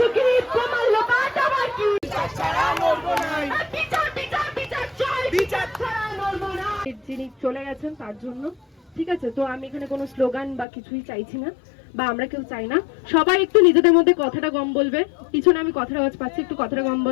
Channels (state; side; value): drops out; right; at 10.7 s